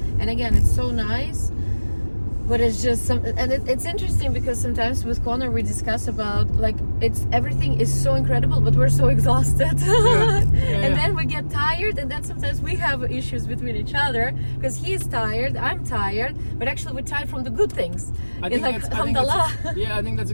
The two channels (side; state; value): both; inverted; correlation -1.00